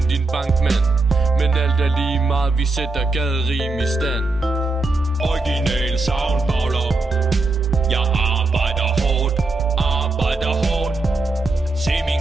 din bankmand, men alt er lige meget, vi sætter gaderim i stand. Original soundballer. Jeg arbejder hårdt, arbejder hårdt. Se min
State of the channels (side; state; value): left; quieter; 3.3 dB